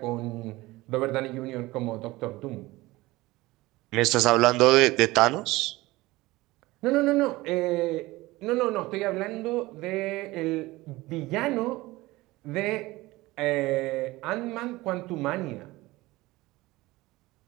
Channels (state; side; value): quieter; left; 19.8 dB